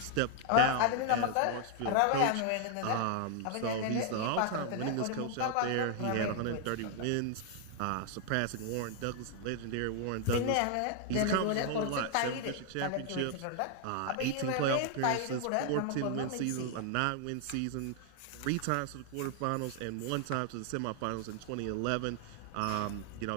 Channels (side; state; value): both; different; correlation 0.00